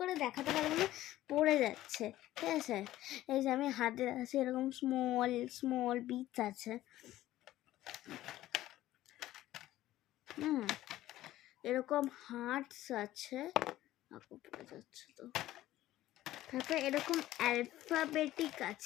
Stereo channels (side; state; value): right; quieter; 14.8 dB